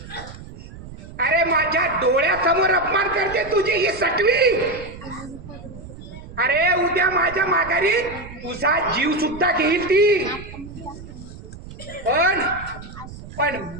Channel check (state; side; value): noise; right; rumble, 15 dB below the sound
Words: अरे माझ्या डोळ्यासमोर अपमान करते तुझी ही सटवी. अरे उद्या माझ्या माघारी तुझा जीव सुद्धा घेईल ती. पण